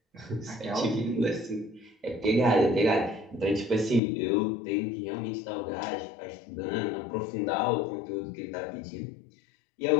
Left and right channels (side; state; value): right; drops out; at 4.0 s